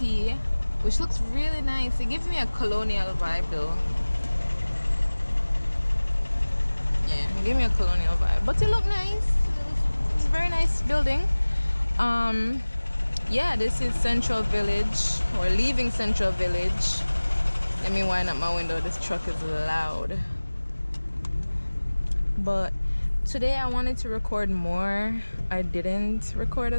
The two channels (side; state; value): both; inverted; correlation -1.00